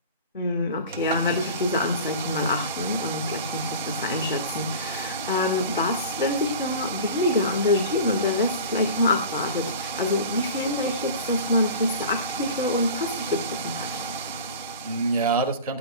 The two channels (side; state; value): both; inverted; correlation -0.37